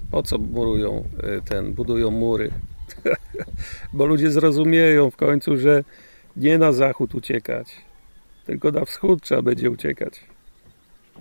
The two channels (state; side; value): inverted; both; correlation -1.00